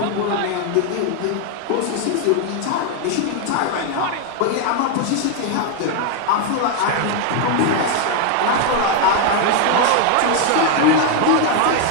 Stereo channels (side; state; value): both; different; correlation 0.01